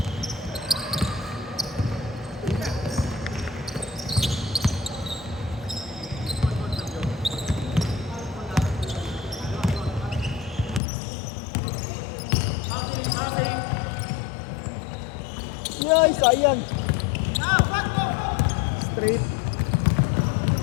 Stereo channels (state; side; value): drops out; right; at 10.8 s